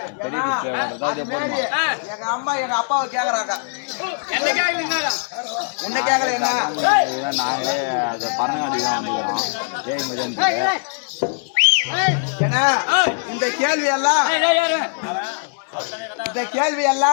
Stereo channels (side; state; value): right; silent; digital silence